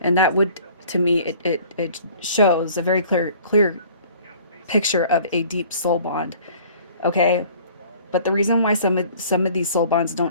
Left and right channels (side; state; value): both; inverted; correlation -0.51